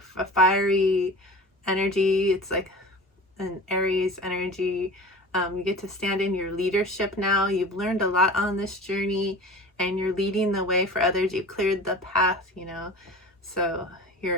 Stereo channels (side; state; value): both; normal; correlation 0.37